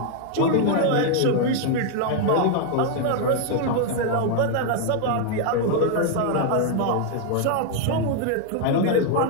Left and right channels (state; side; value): different; both; correlation 0.00